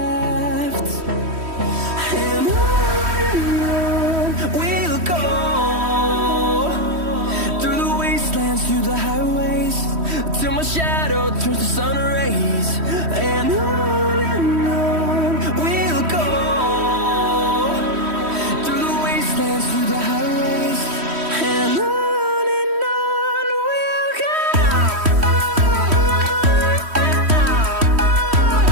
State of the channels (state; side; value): late; left; 3.1 ms